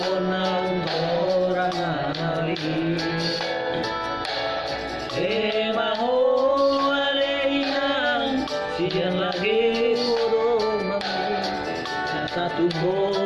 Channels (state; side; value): identical; both; correlation 1.00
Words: na orang ngali maho aleinang siang lagi urung mamu satu